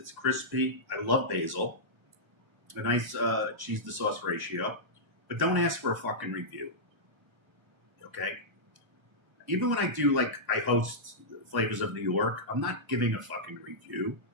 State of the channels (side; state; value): left; late; 1.1 ms